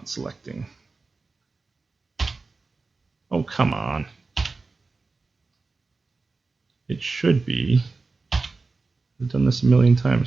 selecting? Oh, come on. It should be. I've done this a million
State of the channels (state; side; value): quieter; left; 3.9 dB